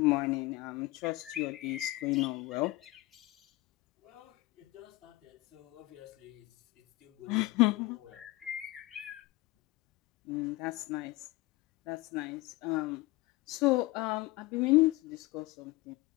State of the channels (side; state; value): right; quieter; 20.1 dB